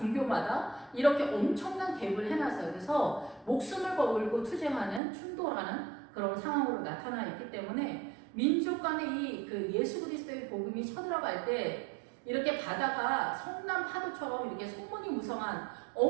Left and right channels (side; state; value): left; drops out; at 5.0 s